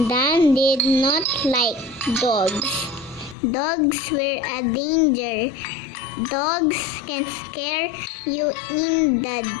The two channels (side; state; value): right; drops out; at 3.4 s